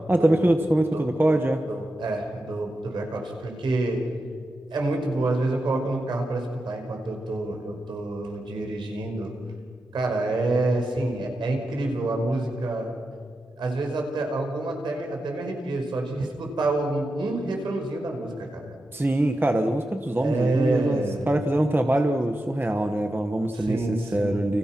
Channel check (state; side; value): normal; both; correlation 0.89